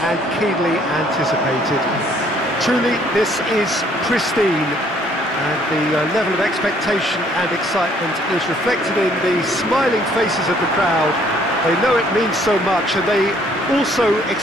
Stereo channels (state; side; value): normal; both; correlation 0.63